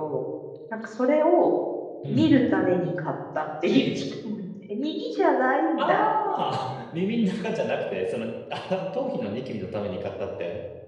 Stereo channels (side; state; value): both; identical; correlation 1.00